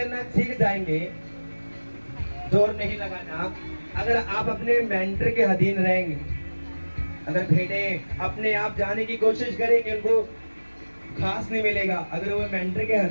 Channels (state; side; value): inverted; both; correlation -1.00